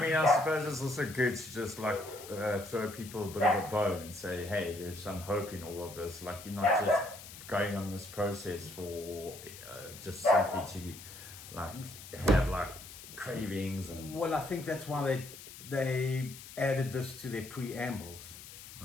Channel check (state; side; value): noise; left; hiss, 15 dB below the sound